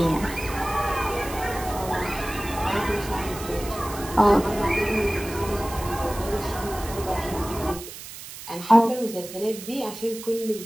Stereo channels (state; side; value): noise; right; hiss, 13 dB below the sound